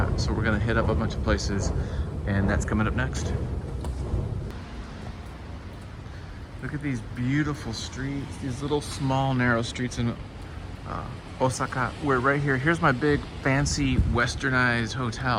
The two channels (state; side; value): identical; both; correlation 1.00